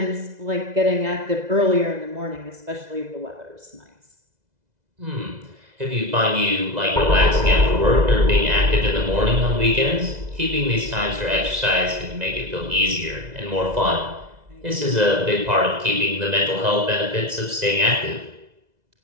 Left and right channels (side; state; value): left; late; 2.0 ms